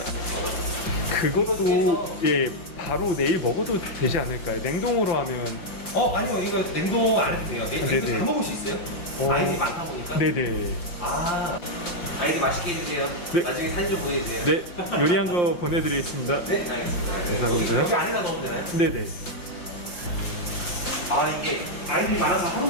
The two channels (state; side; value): late; right; 5.7 ms